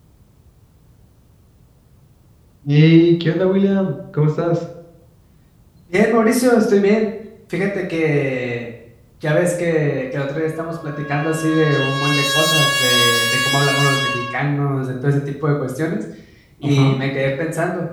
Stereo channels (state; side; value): identical; both; correlation 1.00